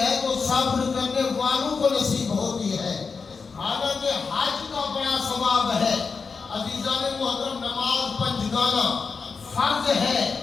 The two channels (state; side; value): quieter; right; 5.0 dB